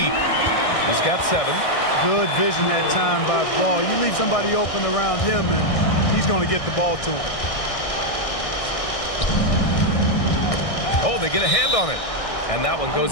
He's got 7. Good vision that time by Ball. You leave somebody open around him, and he's going to get the ball to him. Oh, they get a hand on it. And that one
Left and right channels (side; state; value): right; late; 1.6 ms